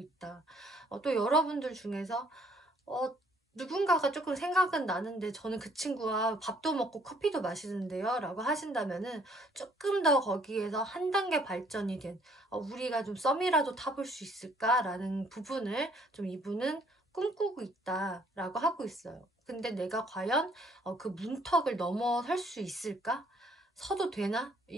또 여러분들 중에서 누군가가 조금 생각은 나는데 저는 그 친구와 밥도 먹고 커피도 마시는데요 라고 하신다면은 조금 더 거기에서 한 단계 발전이 된 우리가 좀 썸이라도 타볼 수 있을까 라는 부분을 좀 이분은 꿈꾸고 있다 라고 하고 있어요. 근데 내가 과연 그 문턱을 넘어설 수 있을까? 서도 되나?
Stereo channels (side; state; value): both; normal; correlation 0.63